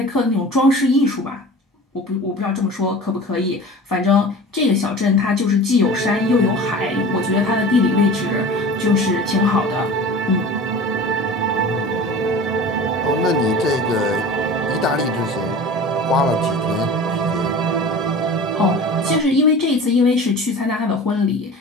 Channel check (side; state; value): both; normal; correlation 0.38